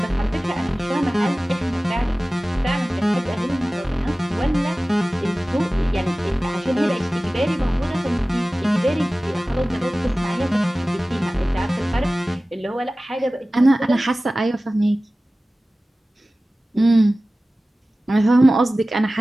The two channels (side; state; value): both; normal; correlation 0.97